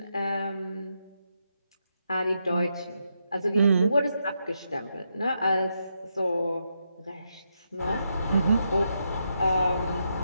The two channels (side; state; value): both; inverted; correlation -0.82